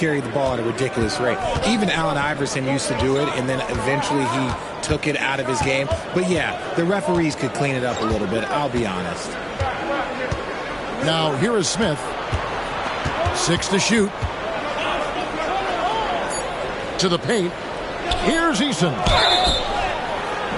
the ball at a ridiculous rate. Even Allen Iverson used to do it, and then eventually he took it out of his game. But yeah, the referees could clean it up a little bit, I'll be honest. Now here is Smith. 6 to shoot. To the paint. Here's Eason.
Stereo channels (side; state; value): both; identical; correlation 1.00